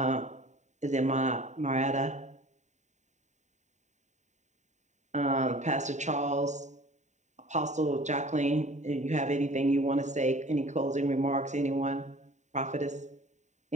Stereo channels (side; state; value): left; late; 0.34 ms